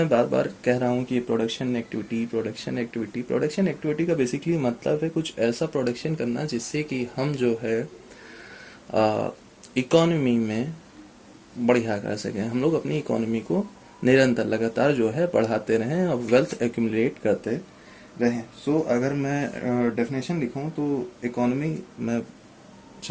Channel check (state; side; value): identical; both; correlation 1.00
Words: बार बार कह रहा हूँ कि प्रोडक्शन एक्टिविटी का बेसिकली मतलब है कुछ ऐसा प्रोडक्शन करना जिससे कि हम जो है इकोनॉमी में बढ़िया कर सकें, हम लोग अपनी इकोनॉमी को निरंतर लगातार जो है बढ़ाते रहें और वेल्थ एक्यूमुलेट करते रहें। सो अगर मैं डेफिनेशन लिखूं तो इकोनॉमी मैं